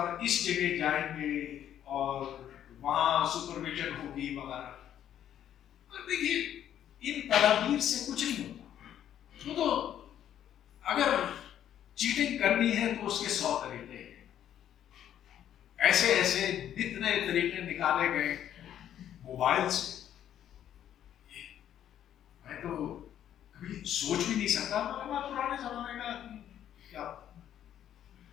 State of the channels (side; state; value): right; quieter; 10.6 dB